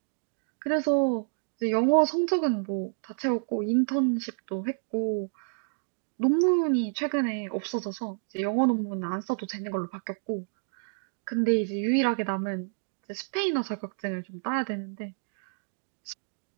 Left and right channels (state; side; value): silent; left; digital silence